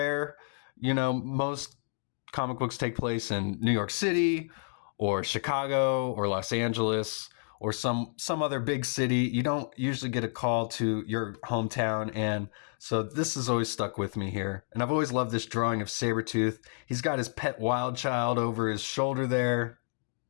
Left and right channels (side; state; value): right; silent; 58 dB below the other